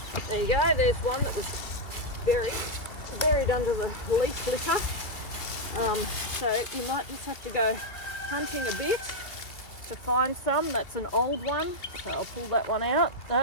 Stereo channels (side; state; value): right; late; 2.2 ms